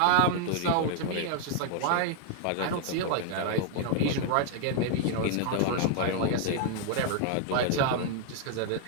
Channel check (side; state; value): both; different; correlation 0.00